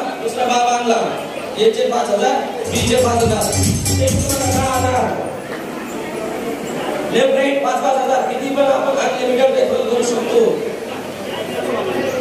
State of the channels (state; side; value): identical; both; correlation 1.00